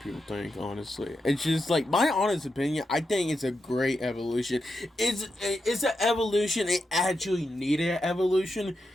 think. Honestly, it's just like my honest opinion. I think it's a great evolution. It's an evolution. It actually needed an evolution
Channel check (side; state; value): both; normal; correlation 0.87